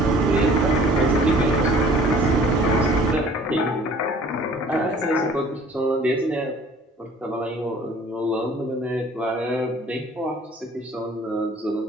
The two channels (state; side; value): normal; both; correlation 0.52